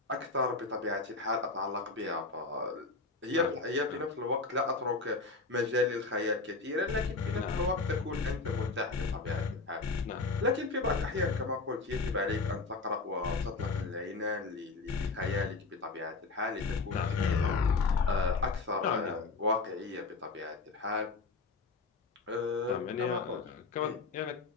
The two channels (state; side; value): quieter; right; 3.8 dB